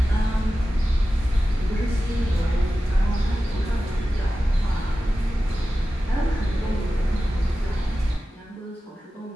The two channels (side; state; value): both; normal; correlation 0.94